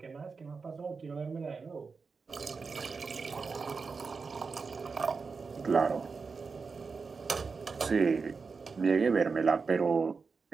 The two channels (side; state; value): left; quieter; 4.8 dB